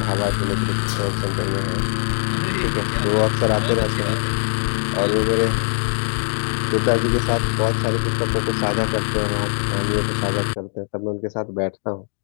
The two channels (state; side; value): silent; right; digital silence